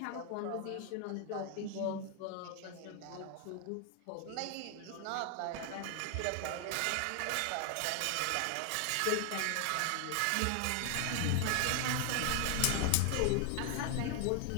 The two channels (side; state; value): both; different; correlation 0.00